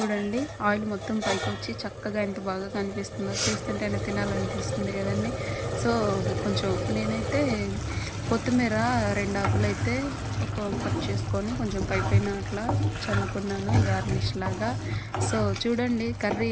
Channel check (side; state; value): both; identical; correlation 1.00